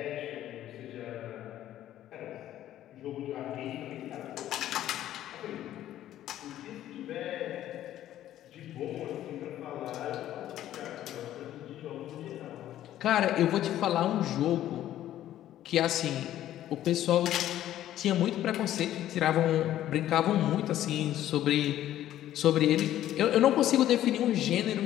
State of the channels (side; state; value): right; quieter; 12.6 dB